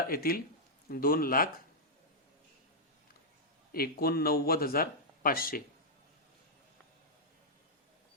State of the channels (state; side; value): normal; both; correlation -0.07